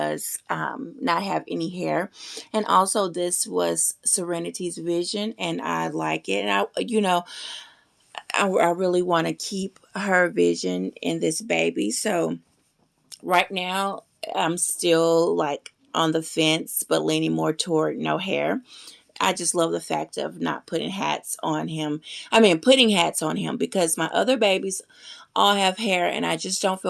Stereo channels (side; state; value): both; identical; correlation 1.00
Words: not have any hair. And also this was Serenity's vision, and I like it. And I really want to keep her vision in this baby. So right now, I'm still like on the fence, but leaning more toward no hair. I just love the fact of not putting hats on him. I mean, putting hats on him because my other babies all have hair, and I just don't